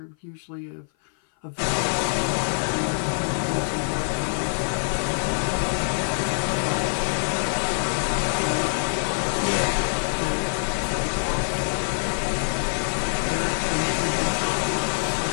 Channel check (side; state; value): right; silent; 56 dB below the other